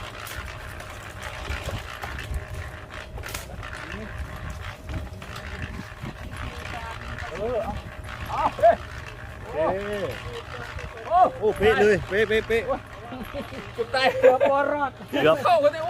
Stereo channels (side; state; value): both; identical; correlation 1.00